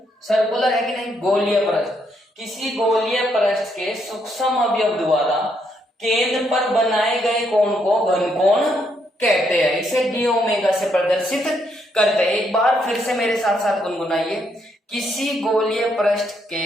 सर्कुलर है कि नहीं, गोलीय पृष्ठ। किसी गोलीय पृष्ठ के सूक्ष्म अवयव द्वारा केंद्र पर बनाए गए कोण को घनकोण कहते हैं, इसे डी ओमेगा से प्रदर्शित करते हैं। एक बार फिर से मेरे साथ साथ गुनगुनाइए, किसी गोलीय पृष्ठ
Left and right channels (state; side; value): normal; both; correlation 0.75